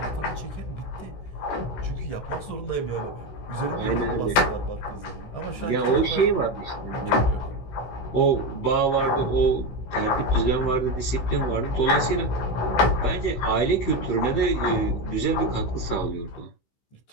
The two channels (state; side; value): late; right; 16 ms